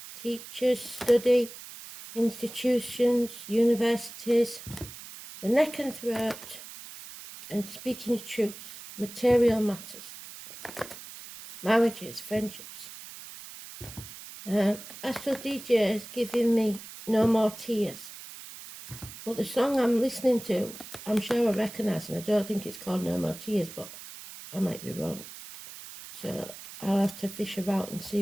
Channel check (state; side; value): noise; right; hiss, 14 dB below the sound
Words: teachers, study, institutions, universities, the neck and throat, and speaking the truth, material matters, marriages, friendships. Astro DJ is giving me No More Tears. But the song I'm listening to, I'm sure I recognise, and I don't think it's called No More Tears, but I might be wrong. So I'll have to fish about and